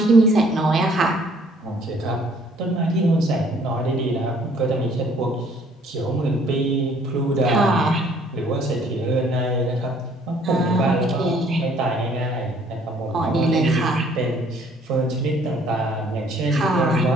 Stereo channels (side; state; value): both; normal; correlation 0.60